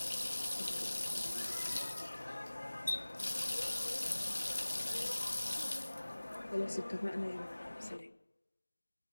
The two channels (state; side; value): inverted; both; correlation -1.00